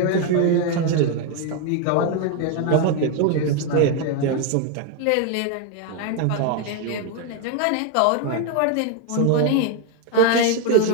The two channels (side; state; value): both; different; correlation 0.01